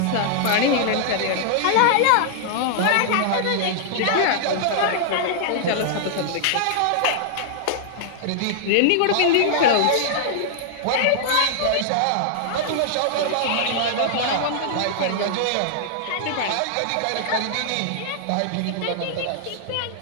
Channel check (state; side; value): different; both; correlation -0.01